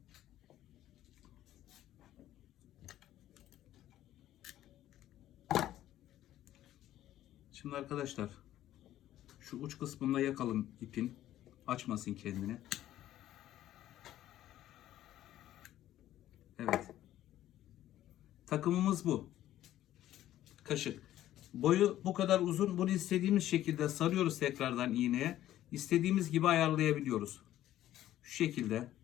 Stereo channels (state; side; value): quieter; right; 13.2 dB